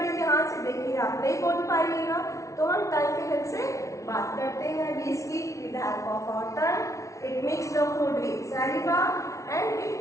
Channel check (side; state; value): right; late; 0.15 ms